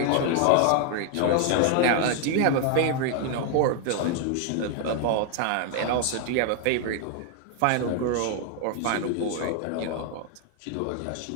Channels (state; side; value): different; both; correlation 0.00